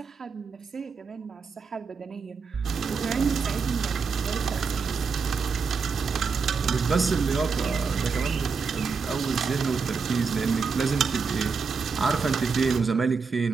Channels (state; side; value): quieter; left; 5.1 dB